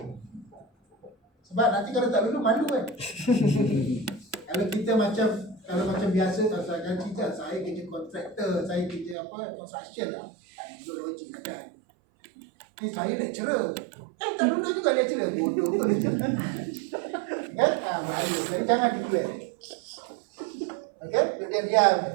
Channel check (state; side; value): drops out; left; at 9.2 s